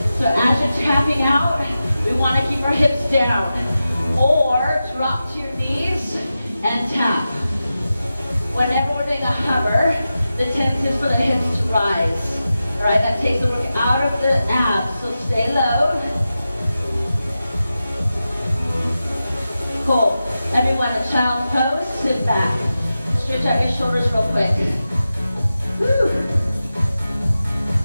So as you're tapping out, we want to keep our hips down. Or drop to your knees and tap. Whenever we're doing a hover, the tendency is for the hips to rise. All right, that takes the work out of the abs, so stay low. Cool. Everyone, a child's pose, sit back. Stretch out your shoulders real quick. Woo.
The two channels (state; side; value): inverted; both; correlation -0.92